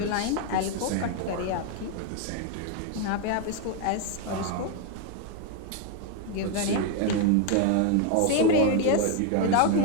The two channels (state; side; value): different; both; correlation 0.01